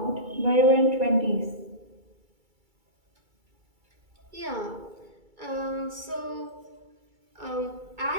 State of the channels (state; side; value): late; left; 2.3 ms